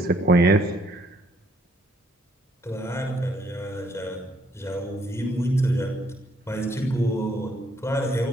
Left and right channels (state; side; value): normal; both; correlation 0.67